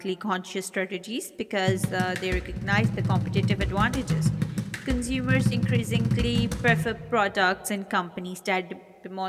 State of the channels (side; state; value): both; identical; correlation 1.00